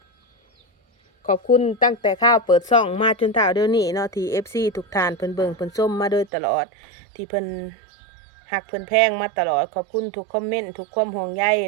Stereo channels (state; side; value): drops out; left; at 6.3 s